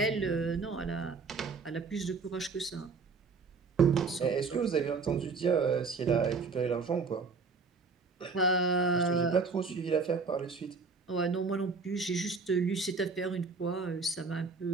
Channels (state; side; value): quieter; left; 4.6 dB